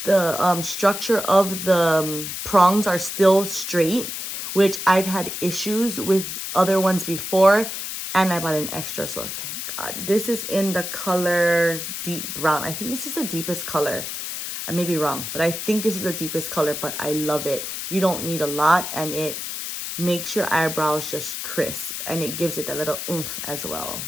The structure of the prongs are still straight, which I've had issues with other ones before, and I bought an extra, so thank God. This is in the color deep brown. I think this is the deepest color. I may be wrong, but I think this is the deepest color, but I love it. You don't need a lot, and it makes your eyebrows just crisp, and it gives it that little oomph as well.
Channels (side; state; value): left; noise; hiss, 6 dB below the sound